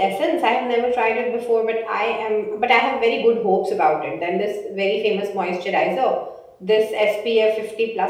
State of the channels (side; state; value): both; identical; correlation 1.00